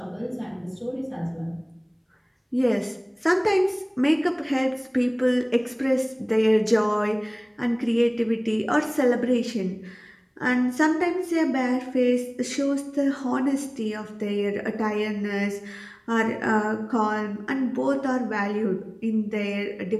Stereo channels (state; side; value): identical; both; correlation 1.00